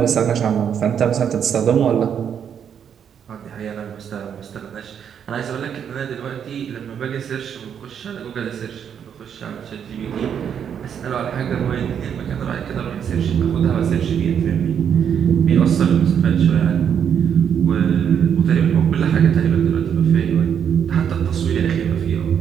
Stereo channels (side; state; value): left; quieter; 8.2 dB